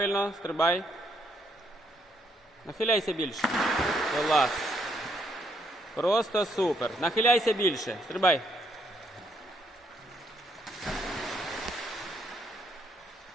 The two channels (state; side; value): normal; both; correlation 0.72